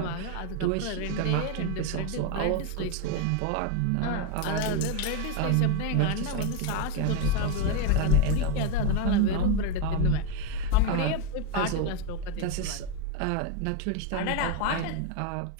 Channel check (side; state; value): both; different; correlation 0.02